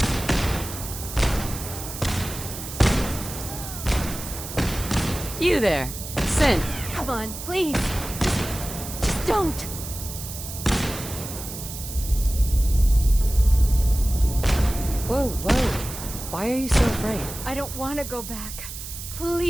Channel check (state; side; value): noise; right; hiss, 10 dB below the sound